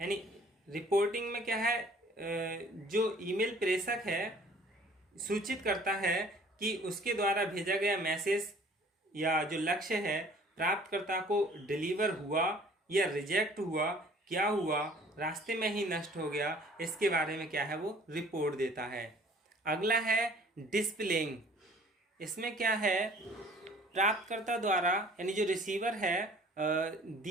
रिपोर्टिंग में क्या है? जो ईमेल प्रेषक है सूचित करता है कि उसके द्वारा भेजा गया मैसेज या जो लक्ष्य है प्राप्तकर्ता को डिलीवर हुआ या रिजेक्ट हुआ, क्या हुआ, रास्ते में ही नष्ट हो गया, इसके बारे में क्या है वो रिपोर्ट देता है। अगला है डिस्प्लेइंग। इसमें क्या है? प्राप्तकर्ता द्वारा यानी जो रिसीवर है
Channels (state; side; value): normal; both; correlation 0.52